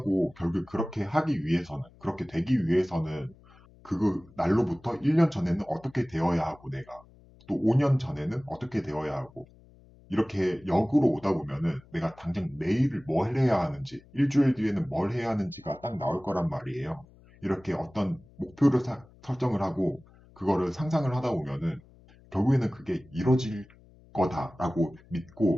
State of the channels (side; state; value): left; noise; hum, 26 dB below the sound